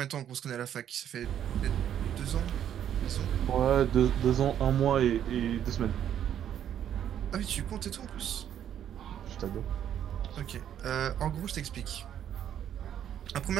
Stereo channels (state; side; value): quieter; left; 10.0 dB